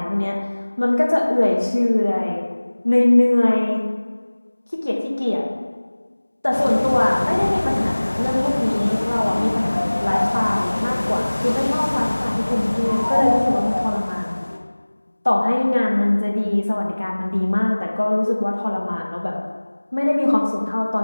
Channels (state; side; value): inverted; both; correlation -1.00